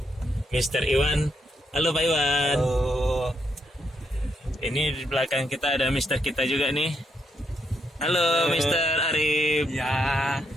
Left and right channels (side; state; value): both; normal; correlation 0.78